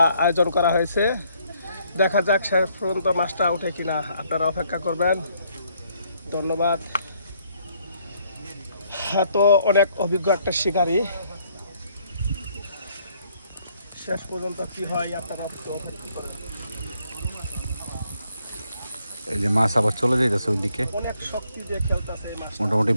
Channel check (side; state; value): both; inverted; correlation -0.68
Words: আয়োজন করা হয়েছে, দেখা যাক শেষ পর্যন্ত মাছটা ওঠে কিনা, আপনারা অপেক্ষা করবেন। ধন্যবাদ। তো অনেক অভিজ্ঞ একটা শিকারী, শেষ পর্যন্ত কি হয় আপনারা একটু অপেক্ষা করেন। এই যে মাছ আবার চলে যাইতেছে ওইদিকে, অনেক শক্তি দিয়ে খেলতেছে এই মাছ, মোটামুটি